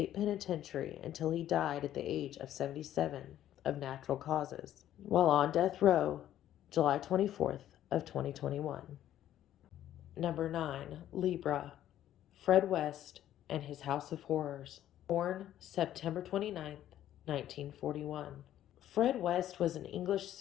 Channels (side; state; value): right; quieter; 12.0 dB